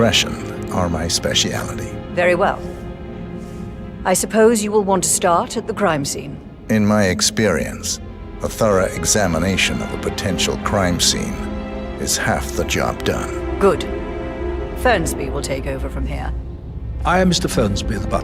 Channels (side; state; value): both; identical; correlation 1.00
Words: are my speciality. Very well. I suppose you will want to start at the crime scene. In my experience, a thorough examination of a potential crime scene is half the job done. Good. Fernsby will take over from here. I am Mr. Fernsby, the